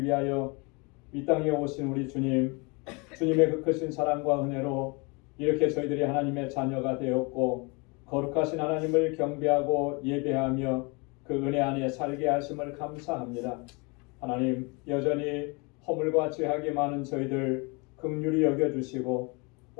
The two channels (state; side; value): quieter; right; 29.7 dB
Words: 위하여 이 땅에 오신 우리 주님, 주님의 그 크신 사랑과 은혜로 이렇게 저희들이 하나님의 자녀가 되었고 거룩하신 하나님을 경배하고 예배하며 그 은혜 안에 살게 하심을 감사합니다. 하나님, 여전히 허물과 죄악이 많은 저희들 긍휼히 여겨주시고